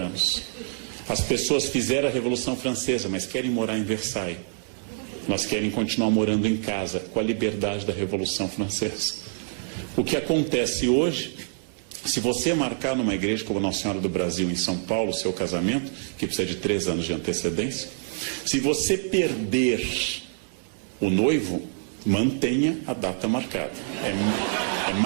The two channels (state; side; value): silent; left; digital silence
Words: As pessoas fizeram a Revolução Francesa, mas querem morar em Versailles. Elas querem continuar morando em casa, com a liberdade da Revolução Francesa. O que acontece hoje, se você marcar numa igreja como Nossa Senhora do Brasil, em São Paulo, o seu casamento, que precisa de 3 anos de antecedência, se você perder o noivo, mantenha a data marcada. É